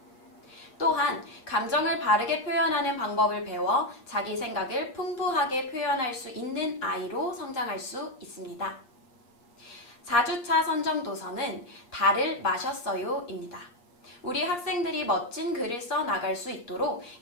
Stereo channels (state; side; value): late; right; 8.5 ms